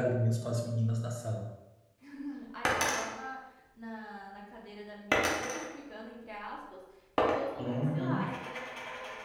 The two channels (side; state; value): both; identical; correlation 1.00